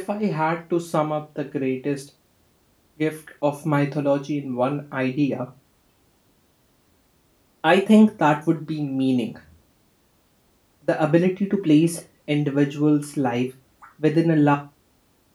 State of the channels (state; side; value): identical; both; correlation 1.00